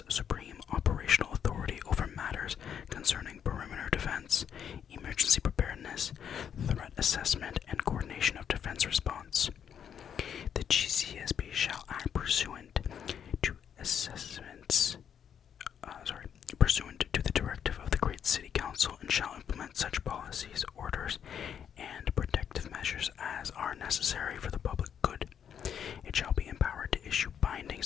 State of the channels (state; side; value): quieter; right; 8.4 dB